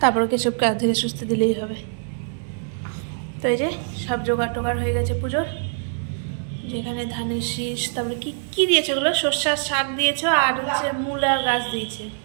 তারপরে কেশবকে ধীরে সুস্থে দিলেই হবে। তো এই যে সব জোগাড় টোগাড় হয়ে গেছে পুজোর। যেখানে ধানের শীষ, তারপরে কি কি দিয়েছে ওগুলো, সর্ষার শাক দিয়েছে, আর হচ্ছে মূলার গাছ দিয়েছে।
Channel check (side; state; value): left; silent; digital silence